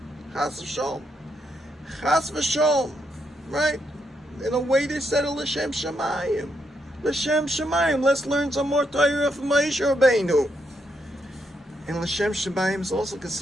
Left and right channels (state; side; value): normal; both; correlation 0.79